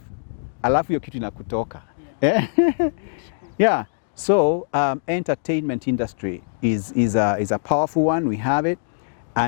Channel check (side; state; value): right; silent; digital silence